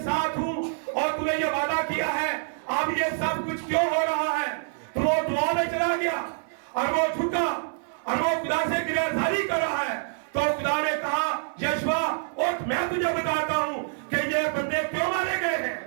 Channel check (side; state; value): left; silent; 61 dB below the other